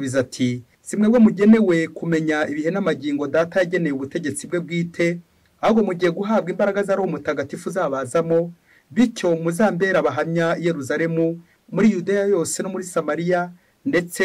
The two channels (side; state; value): both; identical; correlation 1.00